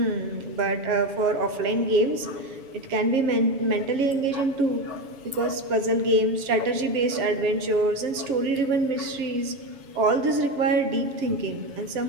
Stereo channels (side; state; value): left; late; 7.0 ms